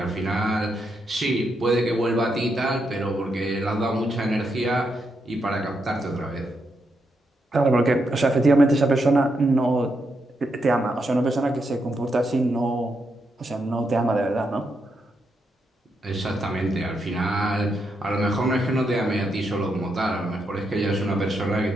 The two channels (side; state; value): both; normal; correlation 0.81